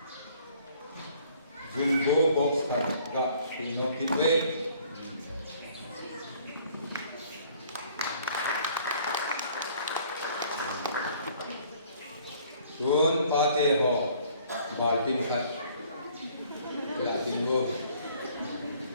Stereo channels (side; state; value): both; inverted; correlation -0.58